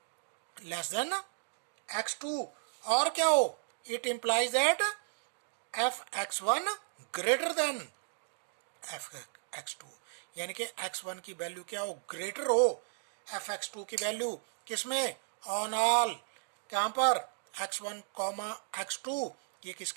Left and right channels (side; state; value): left; silent; digital silence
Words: लेस देन x2, और क्या हो, it implies that F x1 greater than F x2, यानी कि x1 की वैल्यू क्या हो, ग्रेटर हो एफ x2 की वैल्यू, किसमें, ऑन ऑल, कहां पर, x1 x2, ये